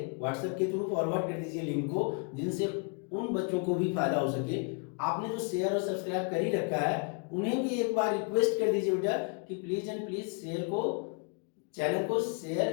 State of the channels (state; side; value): quieter; right; 37.2 dB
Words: व्हाट्सएप के थ्रू फॉरवर्ड कर दीजिए लिंक को, जिनसे उन बच्चों को भी फायदा हो सके। आपने जो शेयर और सब्सक्राइब कर ही रखा है उन्हें भी एक बार रिक्वेस्ट कर दीजिए बेटा कि प्लीज एंड प्लीज चैनल को